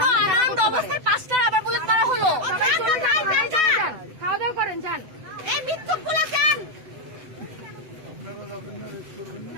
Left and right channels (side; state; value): left; late; 7.9 ms